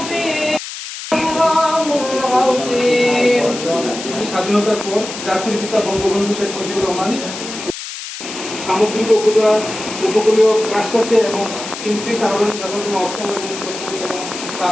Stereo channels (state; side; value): noise; left; hiss, 9 dB below the sound